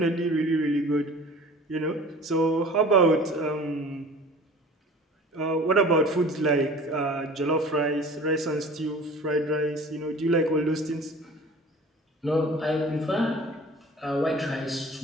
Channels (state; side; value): normal; both; correlation 0.44